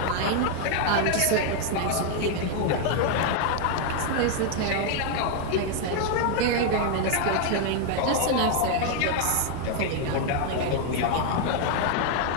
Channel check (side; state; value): both; different; correlation 0.00